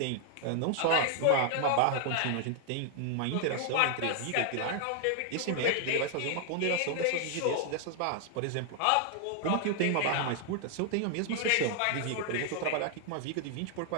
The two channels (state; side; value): different; both; correlation 0.00